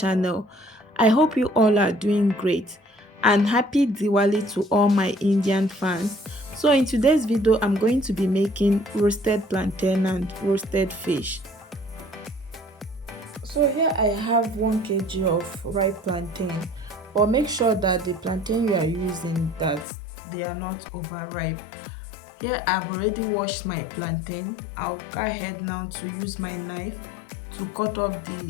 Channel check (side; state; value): right; drops out; at 19.9 s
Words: I hope you all are doing great and happy Diwali to all my Indian fans. So in today's video, I'm going to be making roasted plantain and roasted fish. So here I have 1 kg of ripe plantain, but make sure that the plantain you are using that they are not overripe. Here I've already washed my plantain. I'll go ahead now to use my knife to cut off